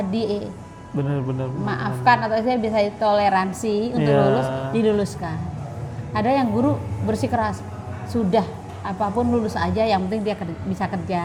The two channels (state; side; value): identical; both; correlation 1.00